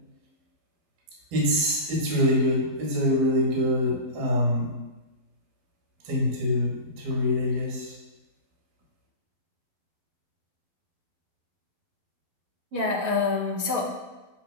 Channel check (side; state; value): left; late; 12 ms